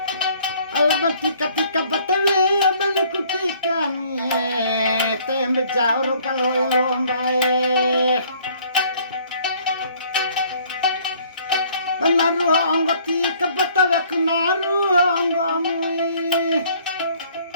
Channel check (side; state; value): both; inverted; correlation -0.58